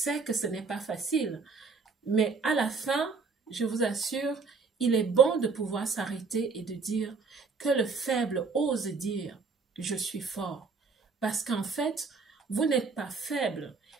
que ce n'est pas facile, mais à la fin, je vous assure, il est bon de pouvoir s'arrêter et de dire que le faible ose dire « je suis fort ». Parce qu'en fait, vous n'êtes pas faible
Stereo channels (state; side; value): quieter; left; 4.7 dB